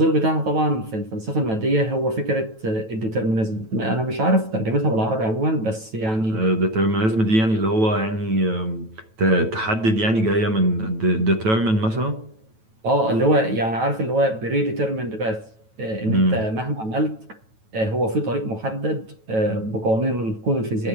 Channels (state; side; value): late; left; 9.1 ms